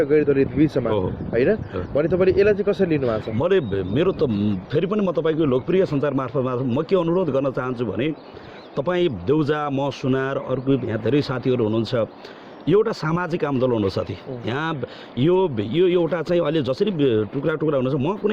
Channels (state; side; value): identical; both; correlation 1.00